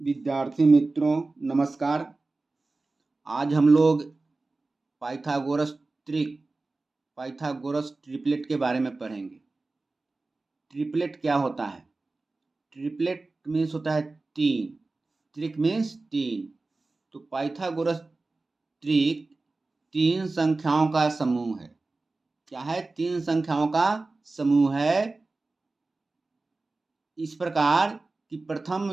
विद्यार्थी मित्रों नमस्कार। आज हम लोग पाइथागोरस ट्रिपलेट के बारे में पढ़ेंगे। ट्रिपलेट क्या होता है? ट्रिपलेट मीन्स होता है तीन। त्रिक मीन्स तीन। तो पाइथागोरस त्रिक तीन संख्याओं का समूह है। क्या है? तीन संख्याओं का समूह है। इस प्रकार कि प्रथम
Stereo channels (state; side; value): quieter; left; 3.4 dB